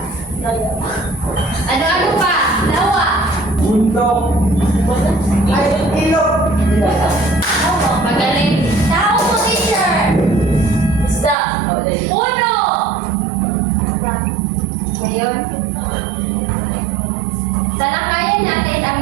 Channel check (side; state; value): left; drops out; at 11.4 s